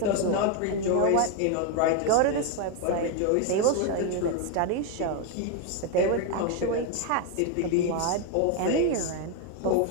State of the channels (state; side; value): different; both; correlation 0.01